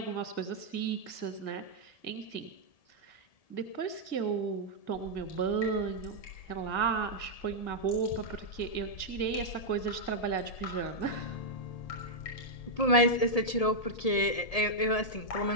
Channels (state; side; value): late; right; 1.7 ms